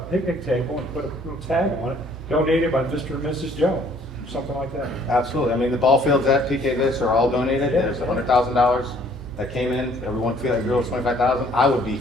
table and put a little tag on it, donated by Mr. and Mrs. Jones, something like that. Absolutely. I mean, the ball fields at PK Viz are all donated. Yeah. There's $100,000 that came in, everyone feel like it was 25,000, I would be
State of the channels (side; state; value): both; normal; correlation 0.59